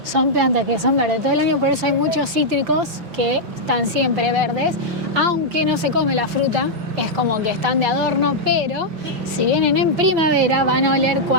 Son plantas que son verdes todo el año, por eso hay muchos cítricos que están siempre verdes, aunque no se come la fruta, es como que están de adorno, pero si vienen en primavera van a oler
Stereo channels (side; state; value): left; late; 6.0 ms